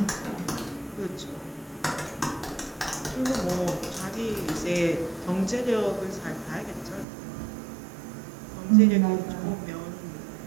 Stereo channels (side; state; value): left; drops out; at 7.1 s